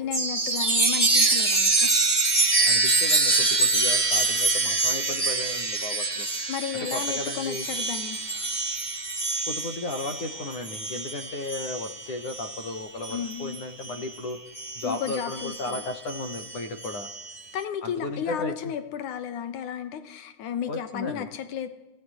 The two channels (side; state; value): right; late; 9.8 ms